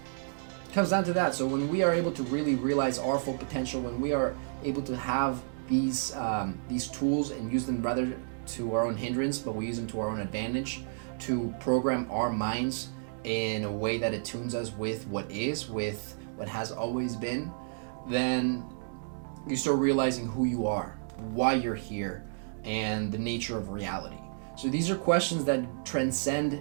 comes down to that. So when we are able to really realize our full potential, when we are able to have these tools and use them rather to our own hindrance, but we use them to our own advantage to program our minds in a way that attunes us with what has always been, then you start realizing who you are, why you're here, and the nature of reality. So these are questions that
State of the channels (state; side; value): silent; left; digital silence